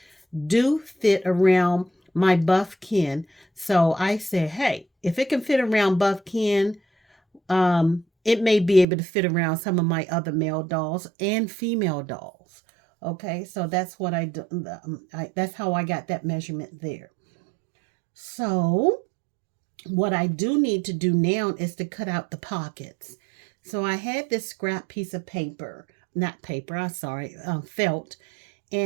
do fit around my buff kin. So I said, hey, if it can fit around buff kin, it may be able to fit around some of my other male dolls and female dolls. Okay, so that's what I do. That's how I got that measurement there. So what I do need to do now is to cut out the pockets. So I had this scrap piece of paper, not paper, I'm sorry, felt,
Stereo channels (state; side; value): drops out; left; at 8.8 s